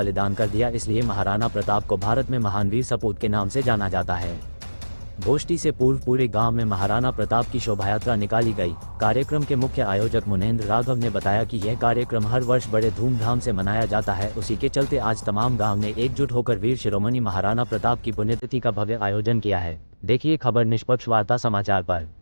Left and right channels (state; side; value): inverted; both; correlation -1.00